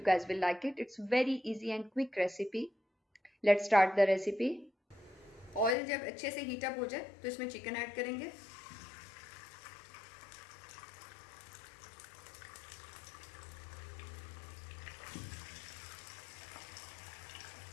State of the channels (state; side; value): drops out; right; at 5.8 s